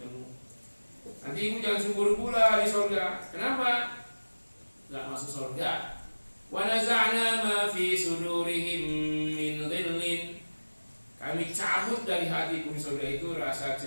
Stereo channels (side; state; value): both; inverted; correlation -1.00